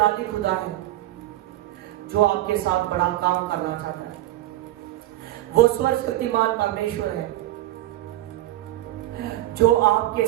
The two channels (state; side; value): quieter; left; 15.3 dB